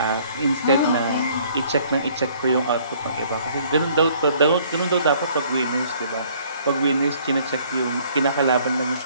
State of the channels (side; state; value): both; inverted; correlation -0.59